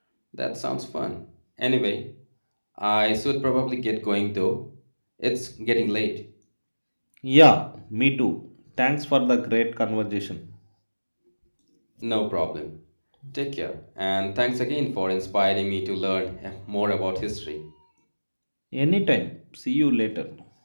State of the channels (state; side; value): inverted; both; correlation -1.00